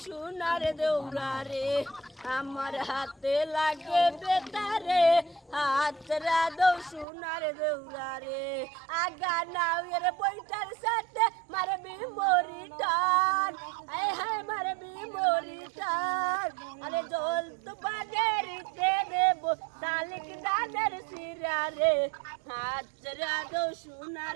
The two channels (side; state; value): left; drops out; at 7.1 s